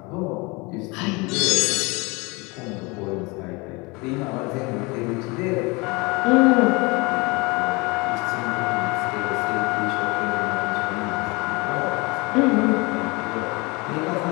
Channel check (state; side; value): quieter; right; 26.6 dB